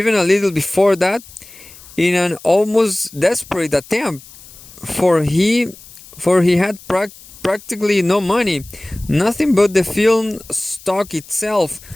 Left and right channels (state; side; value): noise; left; hiss, 20 dB below the sound